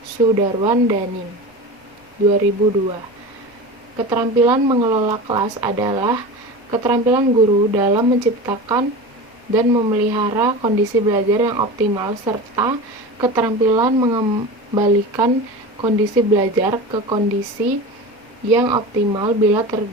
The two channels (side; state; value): both; normal; correlation 0.30